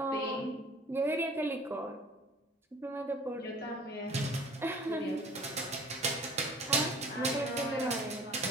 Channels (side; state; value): both; normal; correlation 0.47